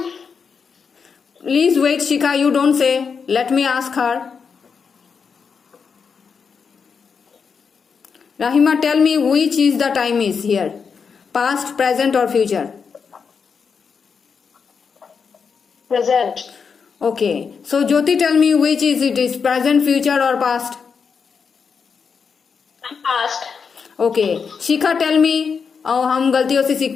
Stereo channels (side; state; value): right; quieter; 5.9 dB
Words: Please wait, Shikha, you don't say. Let me ask her. Rahima, tell me which is the time is here, past, present or future? Present. Okay, so Jyoti, tell me which is it is, present, future or past? Past. Okay, Shikha, tell me, हम गलतियों से